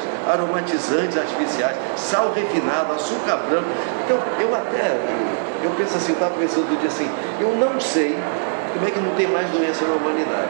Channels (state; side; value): silent; left; digital silence